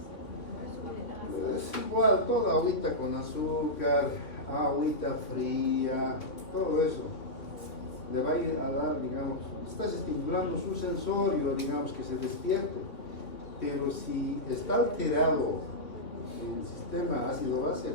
es igual, toda agüita con azúcar, agüita fría, todo eso le va a ir a dar, digamos, estás estimulando su sensorio, digamos, que se despierte. Pero si está alterado el sistema ácido-base,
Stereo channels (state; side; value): late; right; 3.0 ms